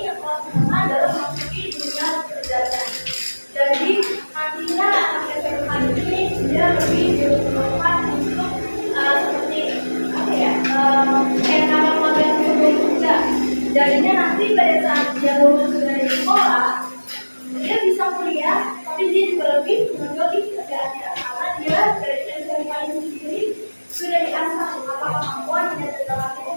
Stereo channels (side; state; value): both; inverted; correlation -1.00